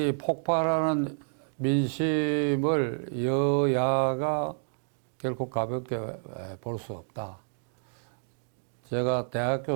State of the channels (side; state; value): left; silent; digital silence